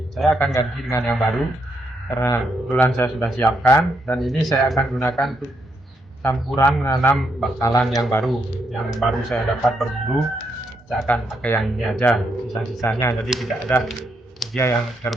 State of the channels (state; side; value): normal; both; correlation 0.78